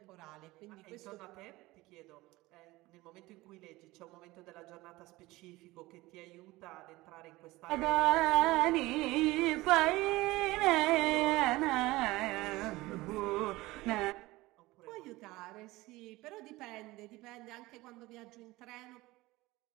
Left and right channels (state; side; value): quieter; left; 19.8 dB